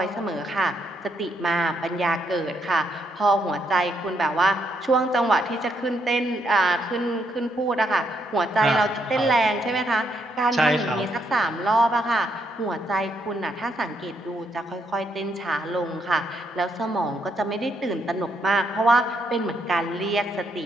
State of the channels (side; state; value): both; normal; correlation 0.75